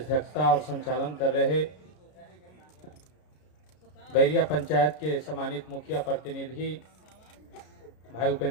और संचालन कर रहे बैरिया पंचायत के सम्मानित मुखिया प्रतिनिधि भाई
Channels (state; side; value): late; right; 33 ms